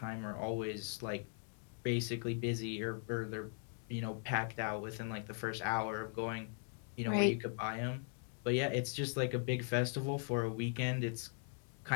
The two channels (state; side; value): silent; right; 51 dB below the other